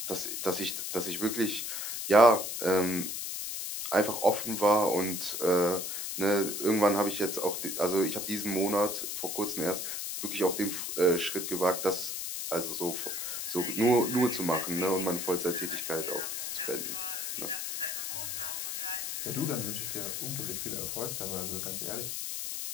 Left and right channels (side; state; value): left; noise; hiss, 4 dB below the sound